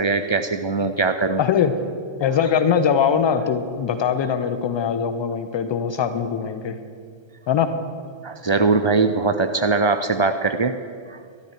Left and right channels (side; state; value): right; late; 1.3 ms